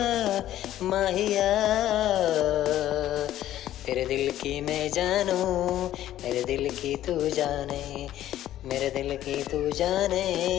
माहिया, तेरे दिल की मैं जानू, मेरे दिल की तू जाने, मेरे दिल की तू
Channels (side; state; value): right; quieter; 12.9 dB